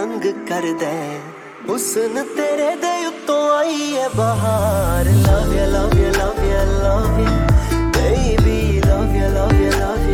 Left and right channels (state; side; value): identical; both; correlation 1.00